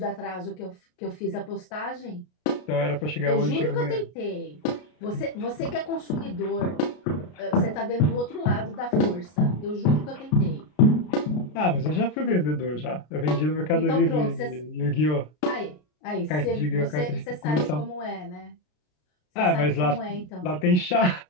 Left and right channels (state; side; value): late; right; 33 ms